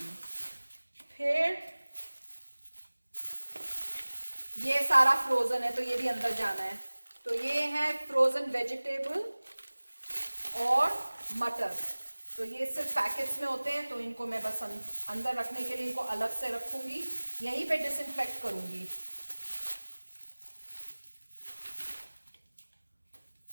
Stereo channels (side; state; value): both; inverted; correlation -1.00